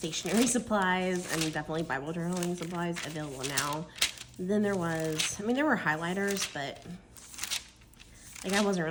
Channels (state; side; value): identical; both; correlation 1.00